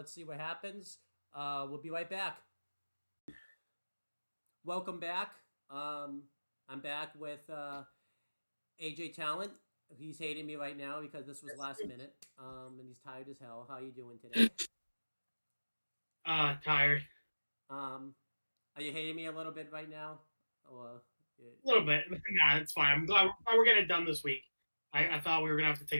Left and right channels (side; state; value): both; inverted; correlation -1.00